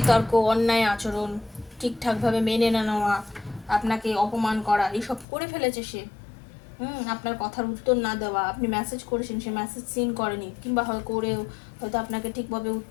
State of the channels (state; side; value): drops out; right; at 5.2 s